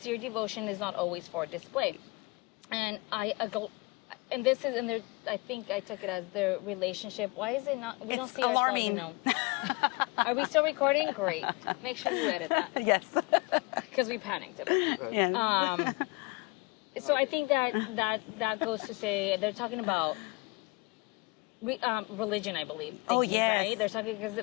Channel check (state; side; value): quieter; right; 26.6 dB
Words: devotion is not always for display. And and this is, and I think I took it as their relationship. Why is it not? We don't see alarming. ourselves, Are we still recording? Great. Make sure you edit that. Yes. Because we panicked a bit. Yes. So I think that goes to say they're talking about religion, I believe. Right? They're talking because